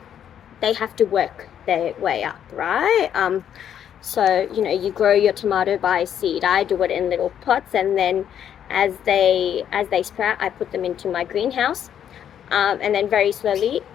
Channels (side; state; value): right; quieter; 9.4 dB